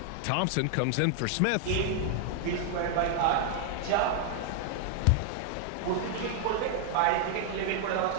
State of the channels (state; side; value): different; both; correlation 0.00